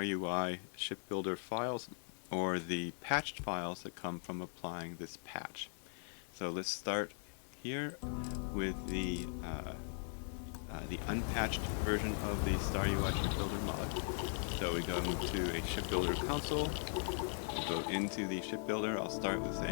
Ship Builder files or the patched files that come from applying this patch. So let's start here with the unpatched version of the StarUI Ship Builder mod. So we go into a Ship Builder console. We'll go into the ship builder. I'll start with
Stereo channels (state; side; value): silent; right; 52 dB below the other